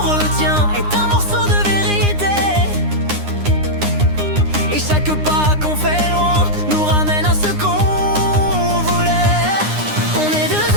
retient est un morceau de vérité. Et chaque pas qu'on fait loin nous ramène à ce qu'on voulait. On est deux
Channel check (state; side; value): late; left; 9.8 ms